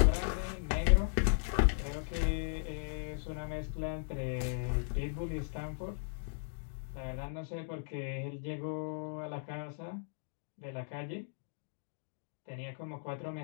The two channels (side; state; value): right; silent; digital silence